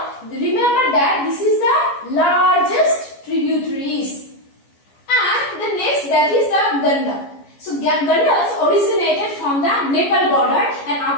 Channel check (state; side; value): late; right; 14 ms